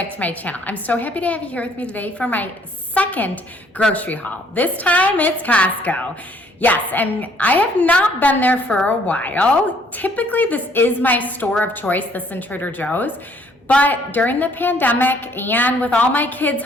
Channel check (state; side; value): normal; both; correlation 0.62